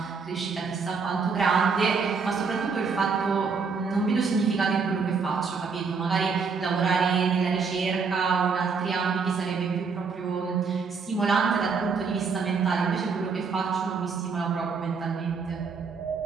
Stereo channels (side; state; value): left; quieter; 5.2 dB